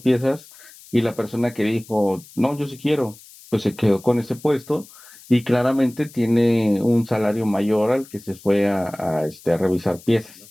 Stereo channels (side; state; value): left; noise; hiss, 22 dB below the sound